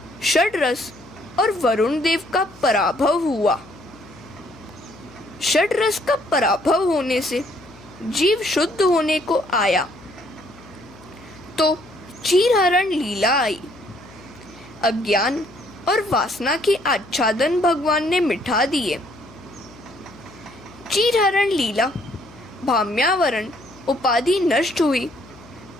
षड रस और वरुण देव का पराभव हुआ। षड रस का पराभव होने से जीव शुद्ध होने को आया तो चीरहरण लीला आई। अज्ञान और वासना के आच्छादन भगवान ने मिटा दिए। चीरहरण लीला, भाम्यावरण उपाधि नष्ट हुई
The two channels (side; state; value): left; noise; hum, 22 dB below the sound